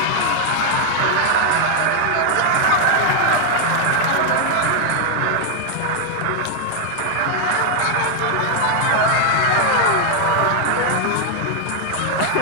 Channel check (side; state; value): both; different; correlation 0.00